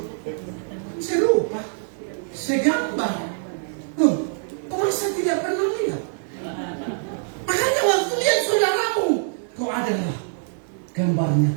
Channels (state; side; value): silent; left; digital silence